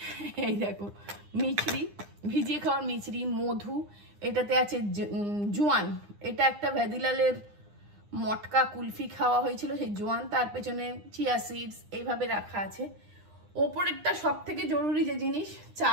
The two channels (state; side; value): late; left; 9.8 ms